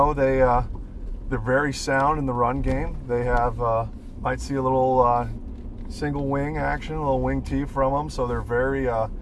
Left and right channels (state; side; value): identical; both; correlation 1.00